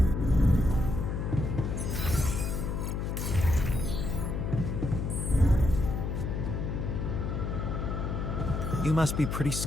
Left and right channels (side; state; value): left; noise; hum, 2 dB below the sound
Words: You must be pretty